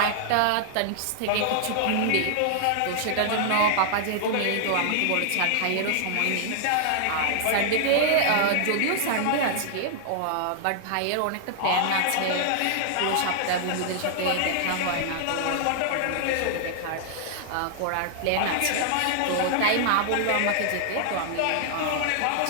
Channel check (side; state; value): both; different; correlation -0.01